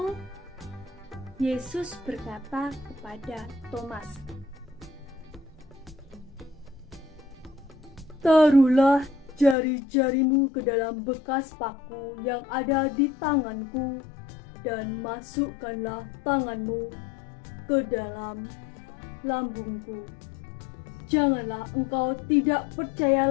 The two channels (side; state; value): right; drops out; at 9.6 s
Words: Yesus berkata kepada Thomas, Taruhlah jari-jarimu ke dalam bekas paku yang ada di tanganku dan masukkanlah tanganmu ke dalam lambungku. Janganlah engkau tidak percaya